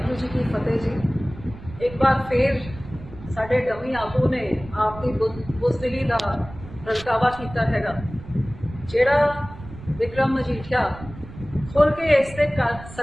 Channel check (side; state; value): right; noise; rumble, 15 dB below the sound